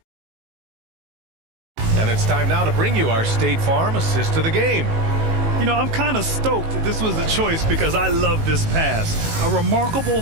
And it's time now to bring you our State Farm assist to the game. You know, I'm kind of stoked that this was a choice because I love this pass. A remarkable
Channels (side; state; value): left; late; 18 ms